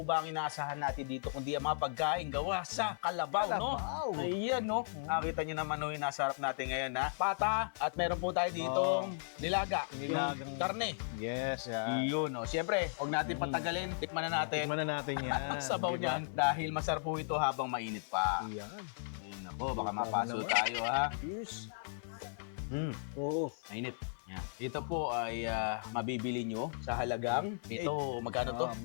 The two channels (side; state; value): right; silent; 54 dB below the other